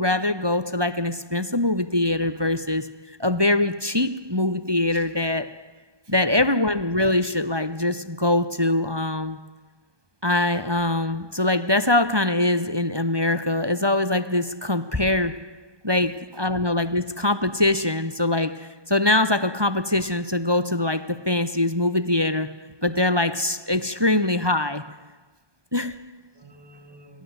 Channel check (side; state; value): left; late; 1.2 ms